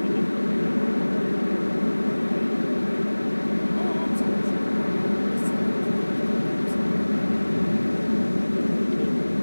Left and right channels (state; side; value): inverted; both; correlation -1.00